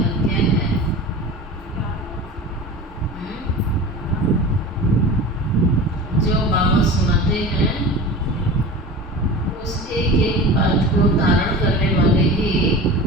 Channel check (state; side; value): normal; both; correlation 0.33